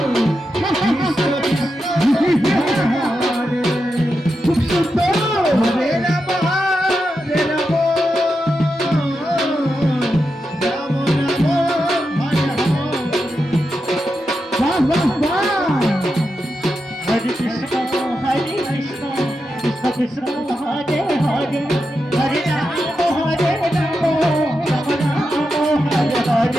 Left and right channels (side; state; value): both; normal; correlation 0.88